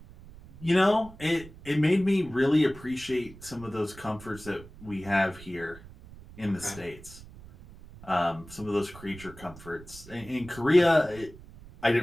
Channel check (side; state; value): right; noise; rumble, 18 dB below the sound